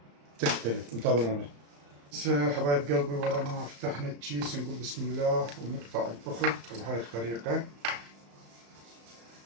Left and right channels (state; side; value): late; left; 35 ms